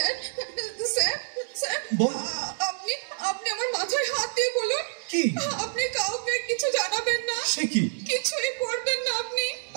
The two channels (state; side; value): silent; left; digital silence